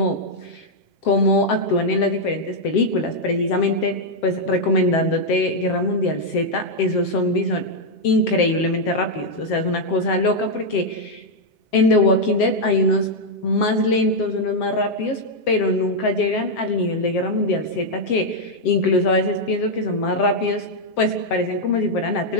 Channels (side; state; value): right; late; 7.5 ms